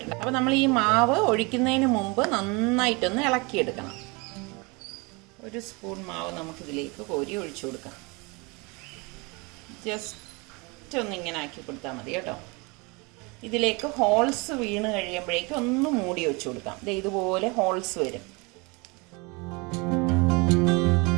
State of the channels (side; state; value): left; quieter; 27.8 dB